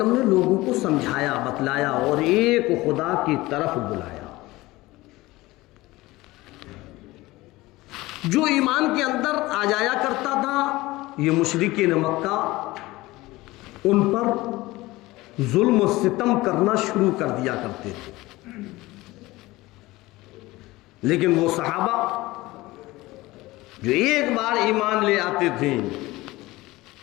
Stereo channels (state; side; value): quieter; right; 19.5 dB